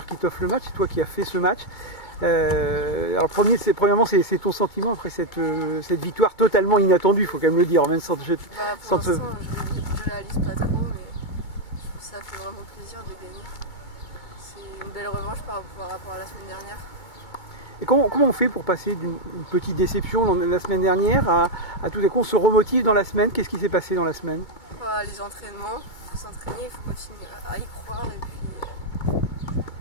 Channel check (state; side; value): late; right; 2.2 ms